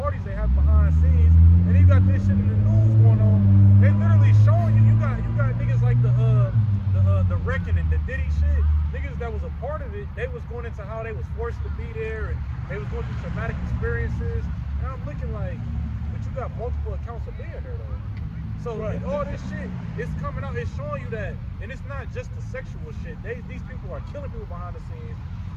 they have behind the scenes, and you got this shit in the news going on. They literally showing you. You got niggas like the Wrecking and the Diddy shit. Niggas that was a part of it. They was going into how they was forced to be there, and they was going through traumatic experiences. And I'm looking like, but you got multiple accounts of being there though. So right. All this shit is coming out. It's showing you that, and it's not just the sexual shit. These people are killing people behind the scenes.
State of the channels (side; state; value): both; identical; correlation 1.00